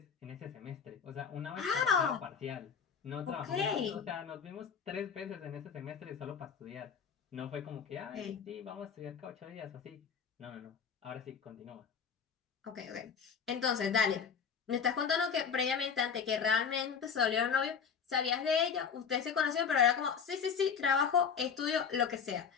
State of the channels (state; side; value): quieter; right; 6.6 dB